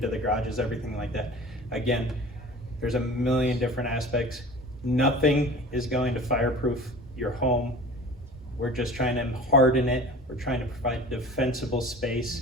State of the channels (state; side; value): normal; both; correlation 0.40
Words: the garages, everything like that. Again, there's a million different aspects. Nothing is going to fireproof your home. We're just trying to harden it. We're trying to provide defensible space